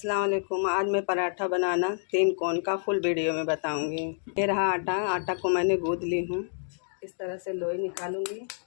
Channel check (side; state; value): right; silent; digital silence